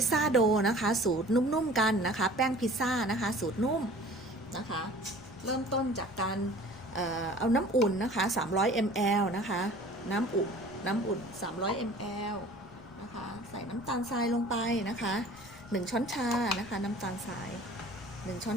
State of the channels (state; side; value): noise; left; rumble, 24 dB below the sound